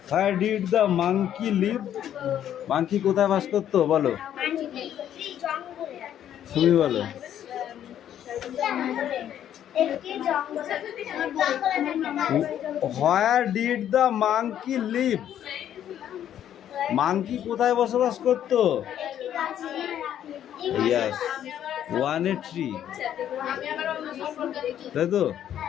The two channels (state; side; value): quieter; right; 10.5 dB